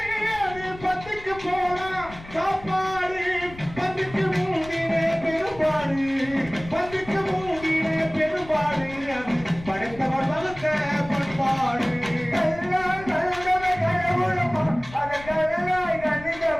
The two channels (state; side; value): noise; left; rumble, 17 dB below the sound